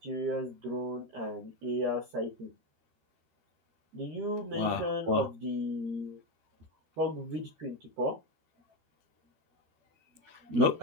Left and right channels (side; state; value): left; late; 12 ms